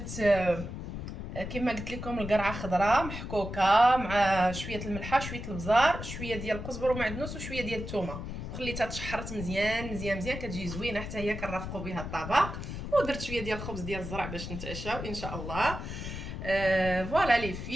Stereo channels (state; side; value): noise; left; rumble, 7 dB below the sound